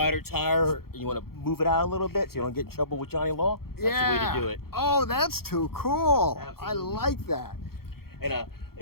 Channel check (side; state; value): right; late; 0.94 ms